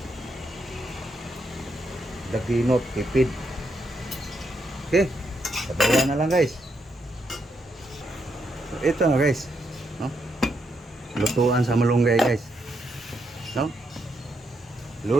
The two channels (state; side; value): normal; both; correlation 0.79